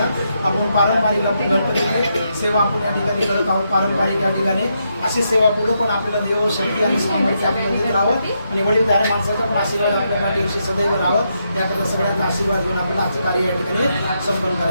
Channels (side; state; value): both; inverted; correlation -0.81